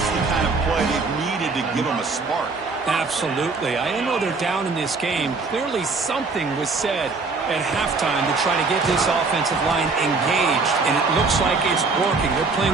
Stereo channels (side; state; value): left; quieter; 4.2 dB